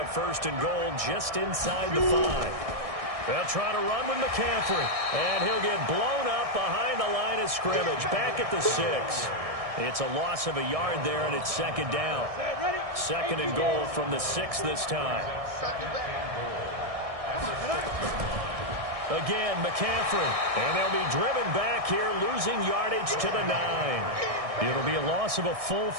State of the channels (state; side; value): late; left; 1.6 ms